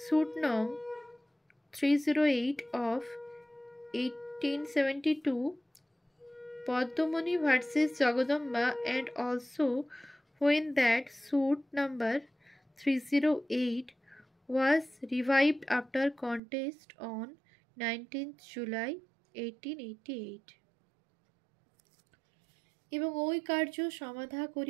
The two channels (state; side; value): drops out; left; at 16.4 s